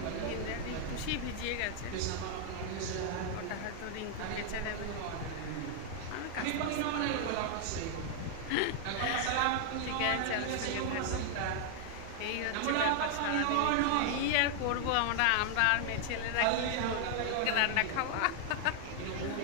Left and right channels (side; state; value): both; different; correlation 0.00